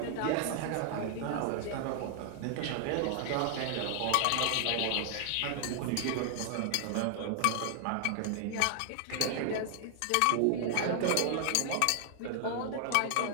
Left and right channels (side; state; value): both; different; correlation 0.00